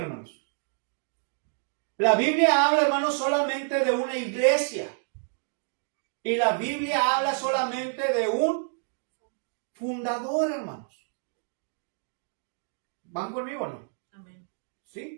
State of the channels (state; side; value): silent; left; 57 dB below the other